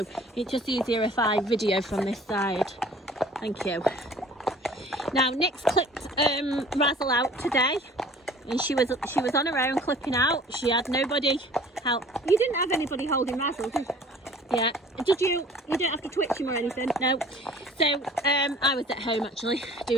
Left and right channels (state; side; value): normal; both; correlation 0.49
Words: it's just easier if I video from this side. Thank you. Now Nick's clipped Razzle out today, and she was on her own clipping out. She had nobody help. You didn't have anybody holding Razzle, did you? Yeah. You don't have to twitch him or anything, no. So, I was at home actually,